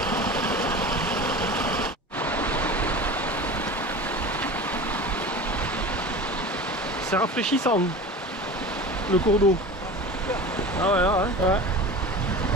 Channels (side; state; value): both; normal; correlation 0.34